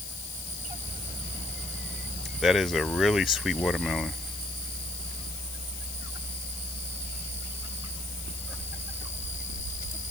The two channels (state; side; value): noise; left; hiss, 8 dB below the sound